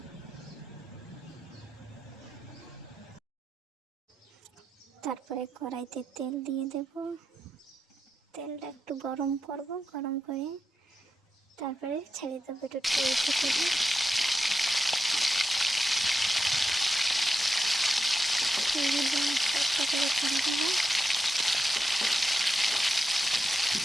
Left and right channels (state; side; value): normal; both; correlation 0.87